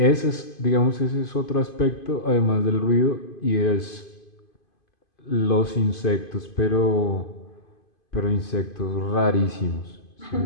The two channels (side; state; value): right; late; 2.5 ms